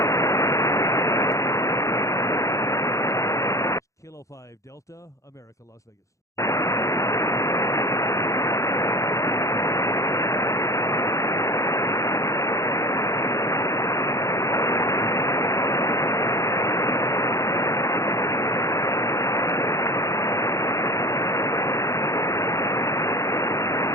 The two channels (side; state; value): right; late; 0.15 ms